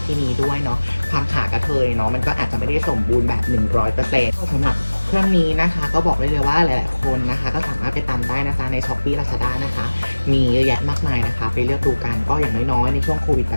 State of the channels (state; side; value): inverted; both; correlation -1.00